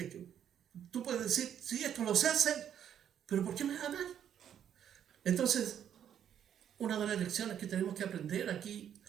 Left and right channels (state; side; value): quieter; left; 9.4 dB